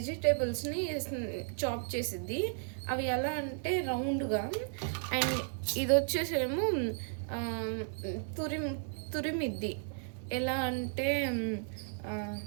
చాప్ చేసిద్ది. అవి ఎలా అంటే రౌండ్గా. అండ్ ఇది వచ్చేసేమో తురిమిద్ది, ఎలా అంటే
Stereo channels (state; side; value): silent; left; digital silence